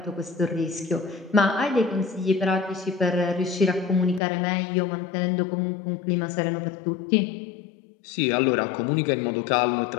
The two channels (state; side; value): drops out; right; at 4.2 s